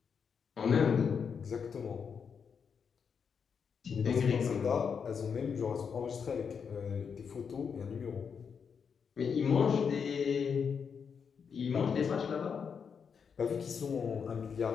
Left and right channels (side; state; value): right; quieter; 6.5 dB